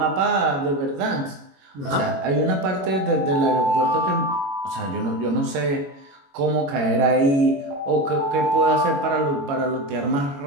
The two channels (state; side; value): late; left; 21 ms